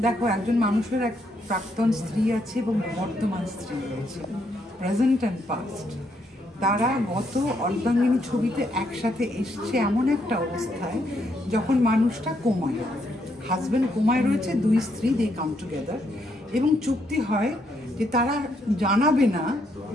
দেখো, একজন মানুষের এক প্রাক্তন স্ত্রী আছে এবং বর্তমান স্ত্রী রয়েছে, প্রেজেন্ট অ্যান্ড পাস্ট। তারা গত অর্ধাঙ্গিনী ছবিতে একসাথে এসছে এমন একটা অবস্থায় যখন মানুষটা কোমায়, হাজব্যান্ড কোমায় রয়েছে, দুই স্ত্রী দে কাম টুগেদার, এবং চুক্তি হয় যে তারা জানাবে না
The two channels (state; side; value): normal; both; correlation 0.75